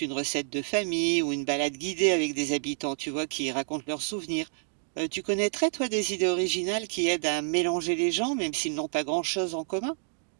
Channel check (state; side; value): silent; left; digital silence